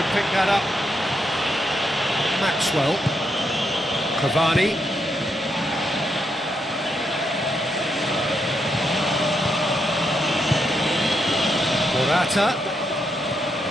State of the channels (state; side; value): normal; both; correlation 0.80